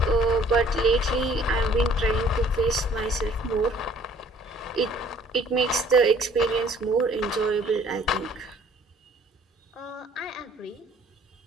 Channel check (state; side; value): normal; both; correlation 0.57